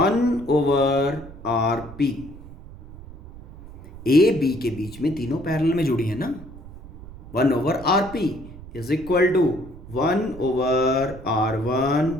A B के बीच में तीनों पैरेलल में जुड़ी है ना. 1/RP is equal to 1/R1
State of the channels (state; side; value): noise; right; rumble, 16 dB below the sound